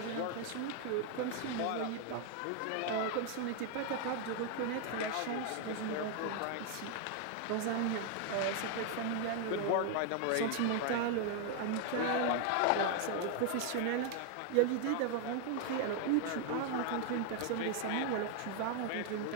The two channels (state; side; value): different; both; correlation 0.00